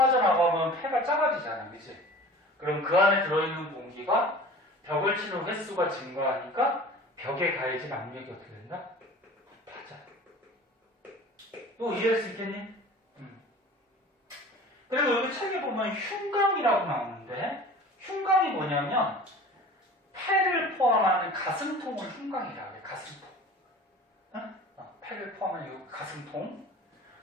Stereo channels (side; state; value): both; normal; correlation 0.41